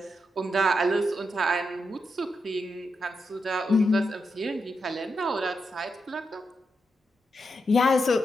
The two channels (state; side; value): normal; both; correlation 0.85